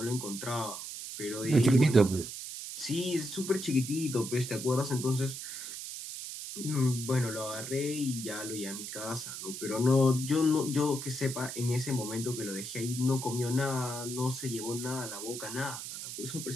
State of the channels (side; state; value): right; noise; hiss, 8 dB below the sound